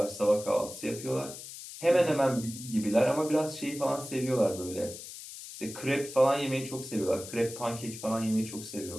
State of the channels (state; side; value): noise; left; hiss, 12 dB below the sound